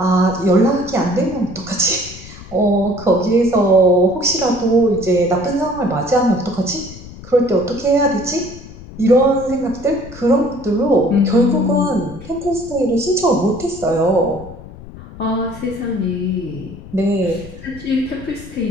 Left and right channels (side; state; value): left; noise; rumble, 16 dB below the sound